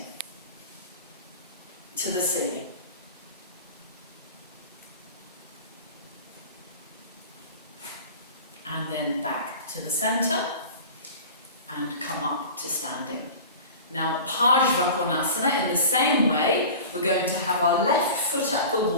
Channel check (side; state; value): both; inverted; correlation -0.36